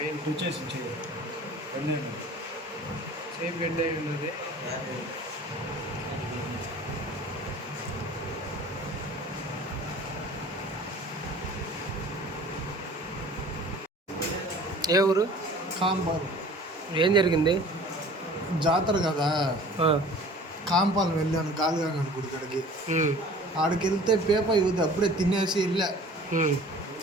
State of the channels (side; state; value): both; normal; correlation 0.46